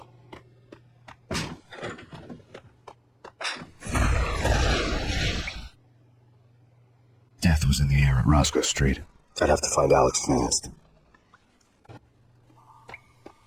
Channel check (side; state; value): both; identical; correlation 1.00